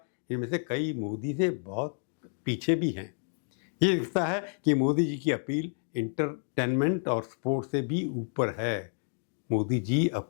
इनमें से कई मोदी से बहुत पीछे भी हैं। ये दिखता है कि मोदी जी की अपील इंटरटेनमेंट और स्पोर्ट्स से भी ऊपर है। मोदी जी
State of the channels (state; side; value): silent; right; 58 dB below the other